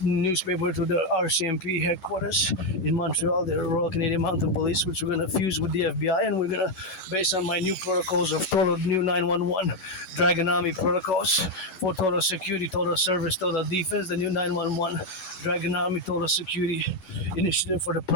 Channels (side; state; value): right; late; 11 ms